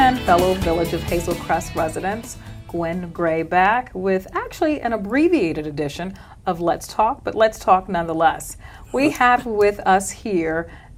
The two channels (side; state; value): both; identical; correlation 1.00